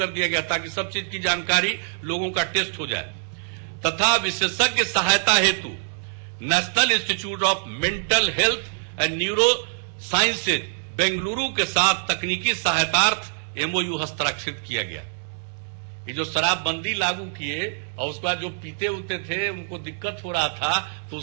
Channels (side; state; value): left; silent; digital silence